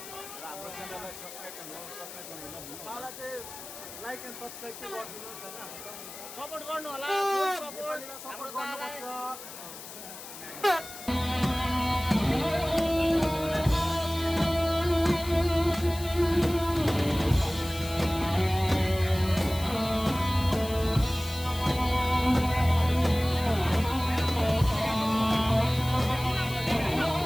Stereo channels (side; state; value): left; noise; hiss, 13 dB below the sound